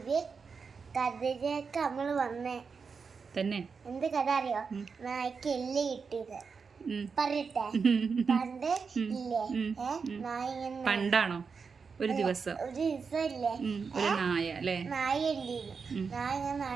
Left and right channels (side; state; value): left; quieter; 5.4 dB